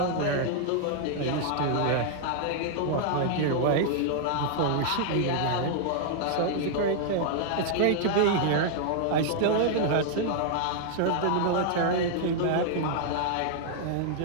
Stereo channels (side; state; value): both; different; correlation -0.01